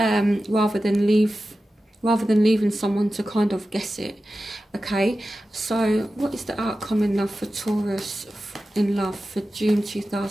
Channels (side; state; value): both; normal; correlation 0.93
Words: rather than leaving someone to kind of guess it. Okay, so what is the outcome in love for Taurus in love for June